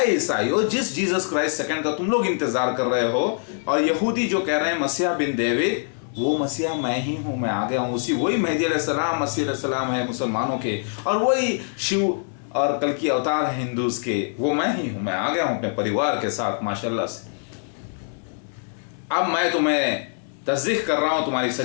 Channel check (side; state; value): right; silent; 63 dB below the other